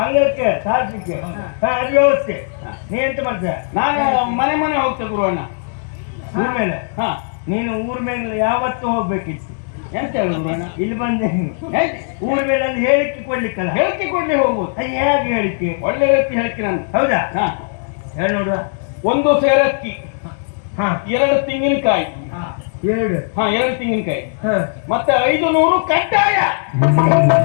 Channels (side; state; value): right; silent; digital silence